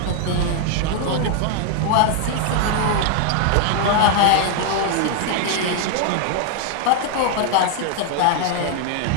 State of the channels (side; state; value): both; different; correlation 0.00